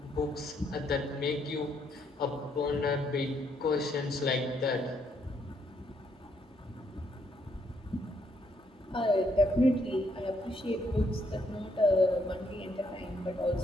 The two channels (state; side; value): normal; both; correlation 0.73